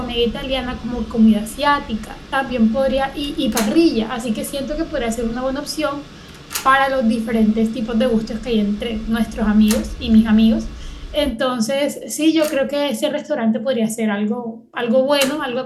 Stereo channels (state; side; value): identical; both; correlation 1.00